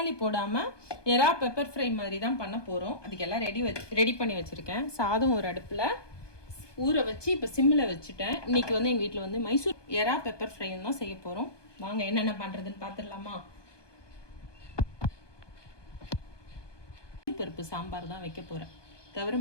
போடாமல் எறா பெப்பர் ஃப்ரை மாதிரி தான் பண்ண போகிறோம். அதுக்கெல்லாம் ரெடி பண்ணி வச்சுருக்கேன். சாதம் ஒரு அடுப்பில் ஊற வச்சு இப்போ சிம்மில் வச்சுட்டேன். இன்றைக்கி வந்து எங்கள் வீட்டில் வந்து மைசூர் எறா பெப்பர் ஃப்ரைன்னு தான் செய்ய போகிறோம். வாங்க என்னென்ன பண்ணுறதுன்னு பார்த்துடலாமா. பருப்பு சாம்பார் தான் வைக்க போகிறேன்.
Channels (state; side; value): late; right; 1.2 ms